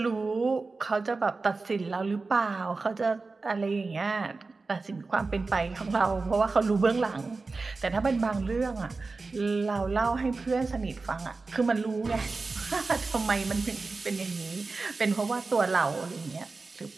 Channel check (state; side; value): quieter; left; 3.9 dB